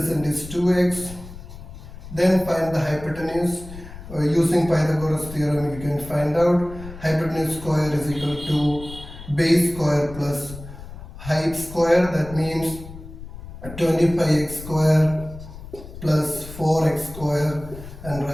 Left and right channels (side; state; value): left; noise; rumble, 14 dB below the sound